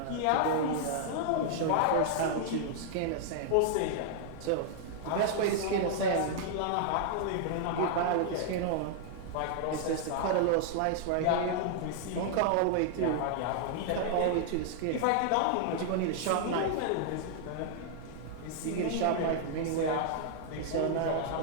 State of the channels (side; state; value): both; different; correlation -0.01